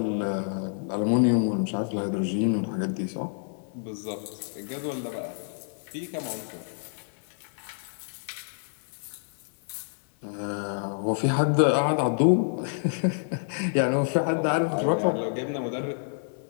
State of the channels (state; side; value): silent; right; 59 dB below the other